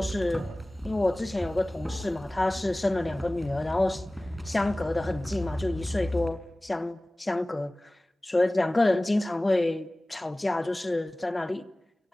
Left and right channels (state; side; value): normal; both; correlation 0.98